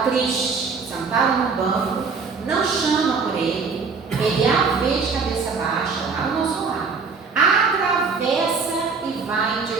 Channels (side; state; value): left; quieter; 5.0 dB